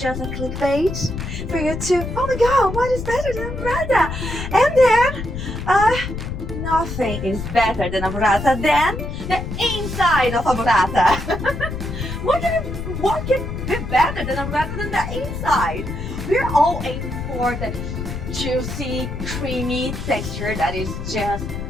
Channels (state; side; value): noise; left; rumble, 6 dB below the sound